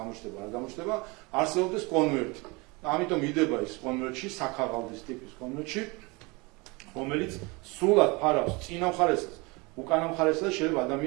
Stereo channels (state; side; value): quieter; left; 26.4 dB